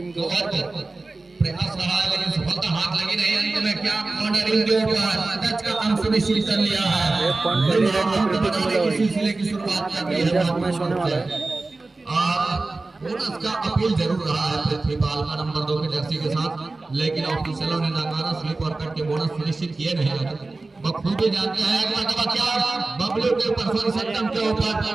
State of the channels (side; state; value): left; quieter; 3.4 dB